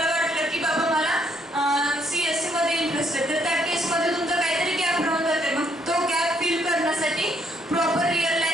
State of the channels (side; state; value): both; normal; correlation 0.70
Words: वाटलं की बाबा मला CSE मध्ये इंटरेस्ट आहे, तर त्या केसमध्ये तुमचा काहीतरी गॅप राहून जाते. मग तो गॅप फिल करण्यासाठी proper real